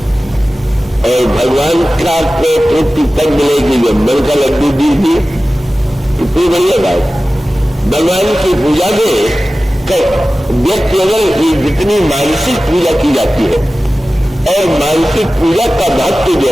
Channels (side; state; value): both; normal; correlation 0.96